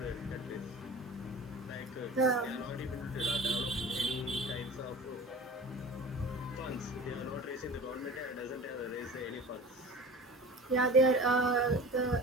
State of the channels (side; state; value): both; normal; correlation 0.39